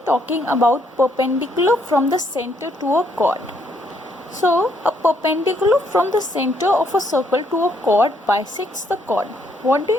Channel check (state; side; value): normal; both; correlation 0.71